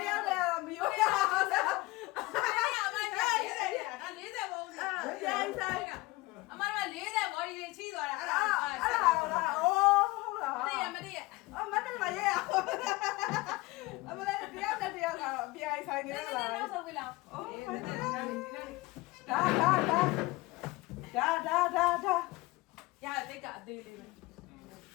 ယိုးရအောင်လား အဲ့ရအမနဲ့40ပုံနေ ဆိုင်ဆိုင် အမက40ဘော်ဒီတွေချီးသွားတာအဲ့ဒါ အဲ့ဒါလားအိုးဟုတ်လား မတည့်ရမတည့်ရ အမနဲ့မရဲရအမလည်းတယောက်နဲ့တယောက်ကတော့အပြိုင်ဆိုင်နေလား နောက်ဆုံးပြီလား အိုး ဒီ ဒါ နေ့ ရတိတ်ကအသေးလေးပဲ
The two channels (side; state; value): right; quieter; 21.6 dB